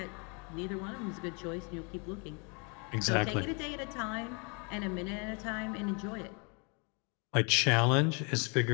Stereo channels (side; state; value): right; quieter; 33.8 dB